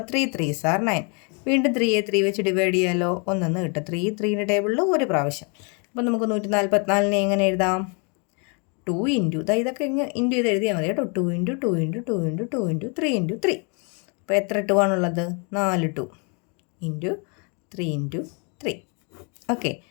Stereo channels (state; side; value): quieter; right; 35.2 dB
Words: 3 3s are 9. വീണ്ടും 3യെ 3 വെച്ച് ഡിവൈഡ് ചെയ്യാമല്ലോ. 1 കിട്ടും. 3ൻ്റെ ടേബിളിൽ ഒരു പ്രാവശ്യം. അപ്പോൾ നമുക്ക് 144നെ എങ്ങനെ എഴുതാം? 2 ഇൻറ്റു ഇതൊക്കെ ഇൻറ്റു ചെയ്ത് എഴുതിയാൽ മതി കേട്ടോ. 2 into 2 into 2 into 2 into 3 into 3. അപ്പോൾ എത്ര 2 ആണുള്ളത്? 4 2 ഇൻറ്റു 3 ഇൻറ്റു 3. ഓക്കെ,